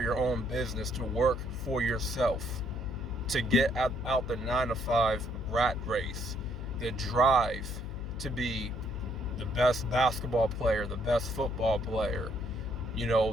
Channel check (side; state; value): left; noise; hum, 7 dB below the sound